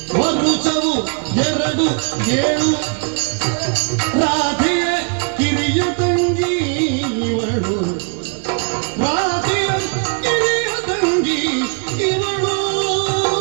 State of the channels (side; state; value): left; quieter; 39.3 dB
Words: ಮರುಚವು ಎರಡು ಏಳು ರಾಧೆಯ ಕಿರಿಯ ತಂಗಿ ಇವಳು ರಾಧೆಯ ಕಿರಿಯ ತಂಗಿ ಇವಳು